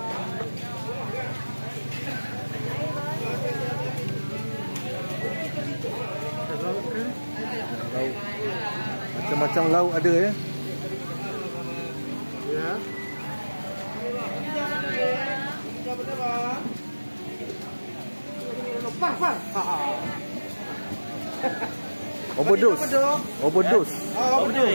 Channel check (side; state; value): both; inverted; correlation -1.00